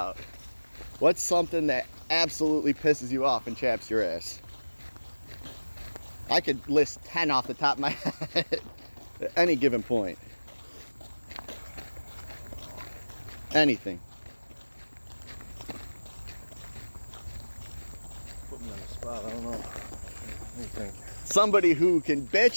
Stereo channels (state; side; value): inverted; both; correlation -1.00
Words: What's something that absolutely pisses you off and chaps your ass? I could list 10 off the top of my head at any given point. Anything. Put me on the spot, I don't know. What do you think? Somebody who can